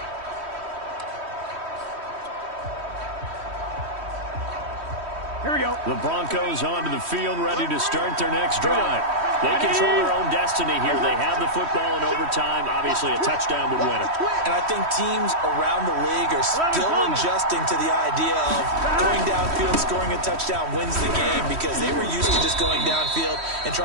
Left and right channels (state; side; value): late; left; 3.1 ms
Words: Here we go. The Broncos onto the field, ready to start their next drive. They control their own destiny here. They have the football in overtime. Obviously, a touchdown would win it. And I think teams around the league are still adjusting to the idea of going downfield, scoring a touchdown wins the game, because they were used to just going downfield and